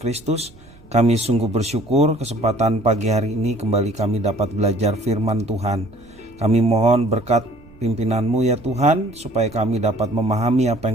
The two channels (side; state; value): right; noise; rumble, 24 dB below the sound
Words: kami sungguh bersyukur kesempatan pagi hari ini kembali kami dapat belajar firman Tuhan. Kami mohon berkat pimpinan-Mu ya Tuhan, supaya kami dapat memahami apa